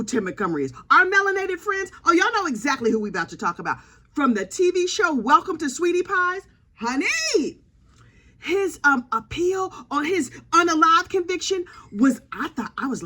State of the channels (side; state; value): both; identical; correlation 1.00